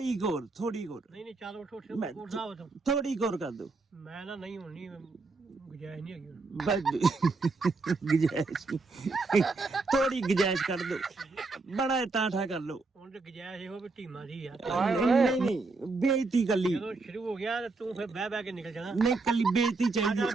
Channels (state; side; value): quieter; left; 3.7 dB